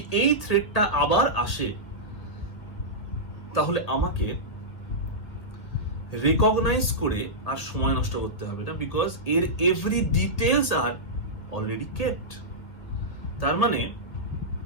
এই থ্রেটটা আবার আসে, তাহলে আমাকে রেকগনাইজ করে আর সময় নষ্ট করতে হবে না, বিকজ এর every details are already kept. তার মানে,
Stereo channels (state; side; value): late; right; 1.8 ms